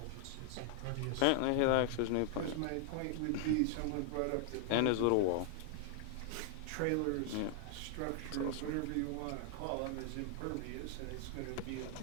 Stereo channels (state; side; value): different; both; correlation 0.00